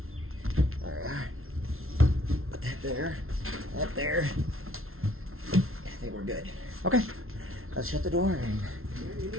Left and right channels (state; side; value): late; left; 0.62 ms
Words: Alright. Put that there. That there. I think we're good. Okay. Let's shut the door and... You